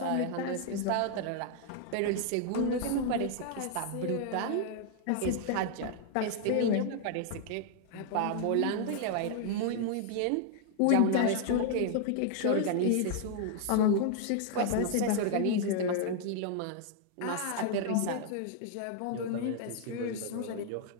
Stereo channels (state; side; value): different; both; correlation 0.00